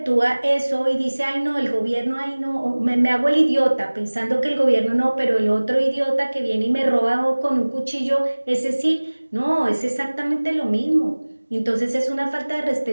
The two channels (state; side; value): inverted; both; correlation -1.00